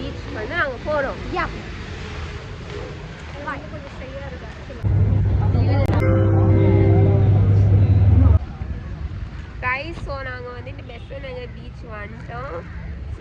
வந்து நாங்கள் போகிறோம். யா கொஞ்சம் சரியாக guys, ஸோ நாங்கள் வந்துட்டு பெஸ்ட்டாக நாங்கள் பீச் வந்துட்டோம். So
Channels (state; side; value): identical; both; correlation 1.00